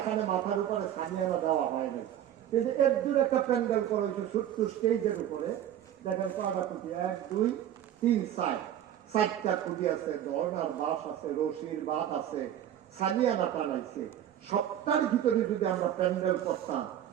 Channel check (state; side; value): quieter; left; 10.9 dB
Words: মাথার উপরে সামিয়ানা দেওয়া হয় নাই, কিন্তু এর দূর একটা প্যান্ডেল করা হয়েছে ছোট্ট স্টেজের উপরে। দেখেন কয়টা খুঁটি, 1 2 3 4টা খুঁটি আছে, ধর্নার বাঁশ আছে, রশির বাঁধ আছে, সামিয়ানা টানাইছে। সবটার ভিতরে যদি আমরা প্যান্ডেল করতাম,